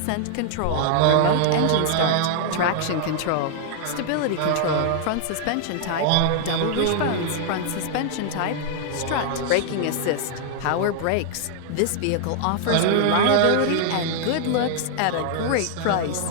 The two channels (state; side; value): different; both; correlation 0.00